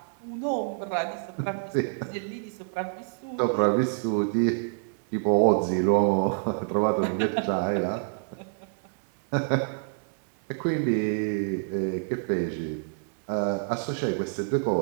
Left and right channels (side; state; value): left; silent; digital silence